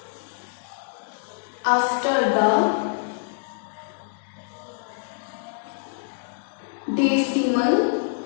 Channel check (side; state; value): right; silent; digital silence